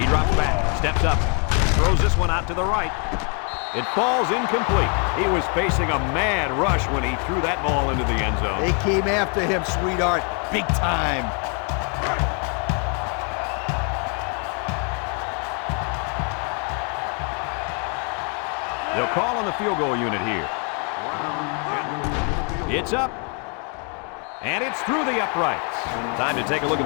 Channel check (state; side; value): quieter; right; 38.3 dB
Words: He drops back, steps up, throws this one out to the right. It falls incomplete. He was facing a mad rush when he threw that ball into the end zone. They came after him, sweetheart, big time. They'll call on the field goal unit here. It's up. And it's through the uprights. Time to take a look